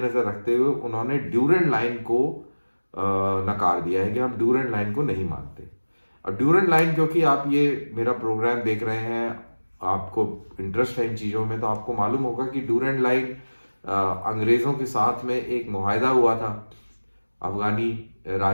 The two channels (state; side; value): inverted; both; correlation -1.00